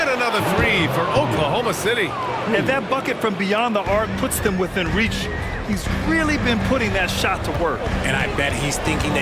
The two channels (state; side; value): identical; both; correlation 1.00